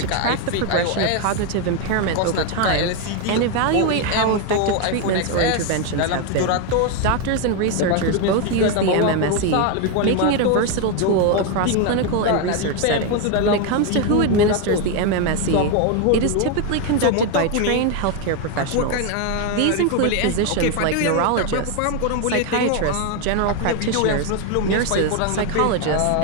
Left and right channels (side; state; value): both; different; correlation 0.01